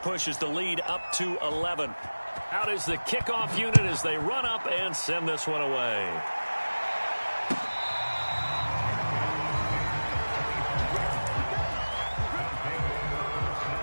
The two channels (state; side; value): inverted; both; correlation -1.00